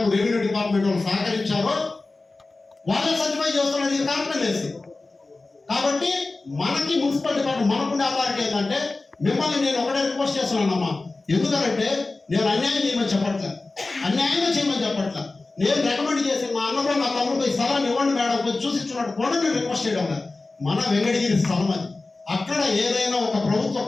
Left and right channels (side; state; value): right; quieter; 3.4 dB